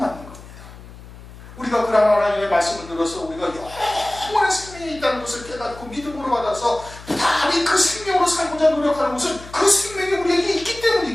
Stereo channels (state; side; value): noise; left; hum, 17 dB below the sound